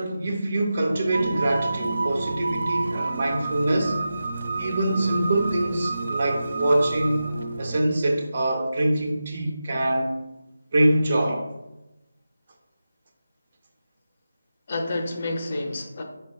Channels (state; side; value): inverted; both; correlation -0.92